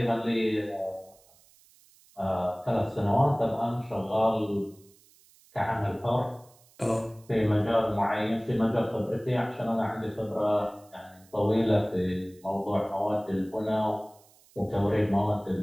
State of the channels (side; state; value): right; noise; hiss, 29 dB below the sound